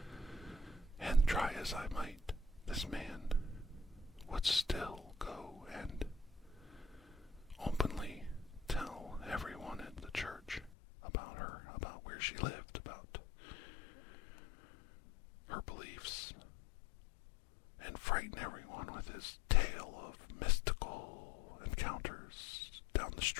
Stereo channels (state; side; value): drops out; right; at 10.7 s